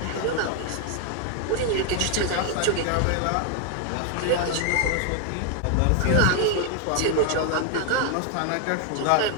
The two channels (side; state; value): both; different; correlation 0.00